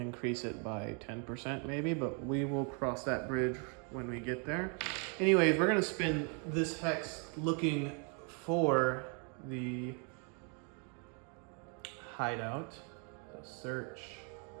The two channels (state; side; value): quieter; left; 38.0 dB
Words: it by 10% maybe, but we will cross that bridge when we get there. Anyways, we're gonna spend this hex looking for the hideout. So search.